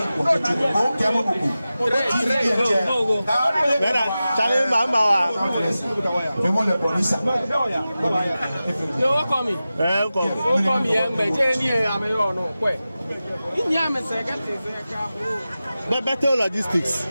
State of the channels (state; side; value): inverted; both; correlation -0.95